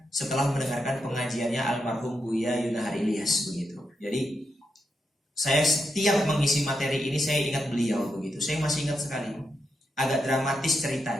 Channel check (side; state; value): both; normal; correlation 0.84